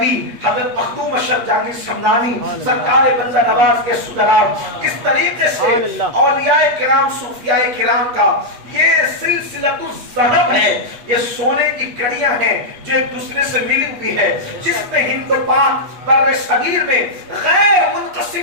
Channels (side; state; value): left; late; 8.3 ms